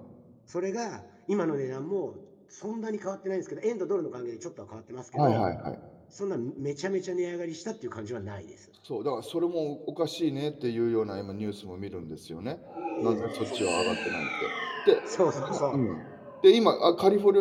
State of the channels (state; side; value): identical; both; correlation 1.00